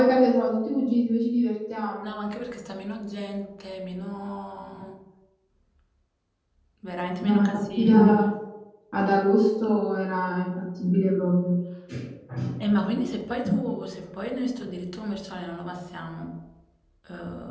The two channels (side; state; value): both; identical; correlation 1.00